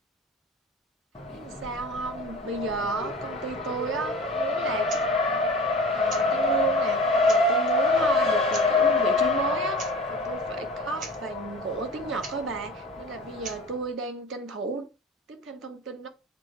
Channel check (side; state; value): both; normal; correlation 0.37